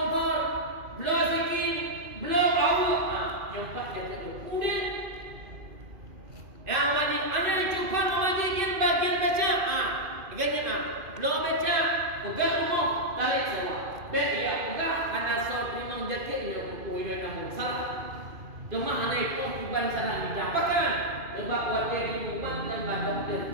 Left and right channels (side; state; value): left; late; 2.5 ms